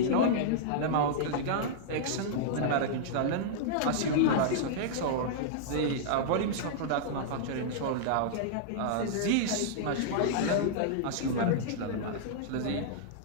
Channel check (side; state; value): both; different; correlation -0.02